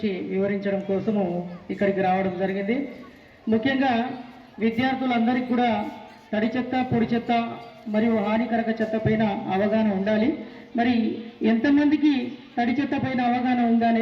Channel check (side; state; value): both; identical; correlation 1.00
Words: వివరించడం కోసము ఇక్కడికి రావడం జరిగింది. ముఖ్యంగా విద్యార్థులందరికీ కూడా తడి చెత్త పొడి చెత్త మరియు హానికరక చెత్త పైన అవగాహన ఉండాలి. మరి ఎంతమందికి తడి చెత్త పైన అవగాహన ఉందా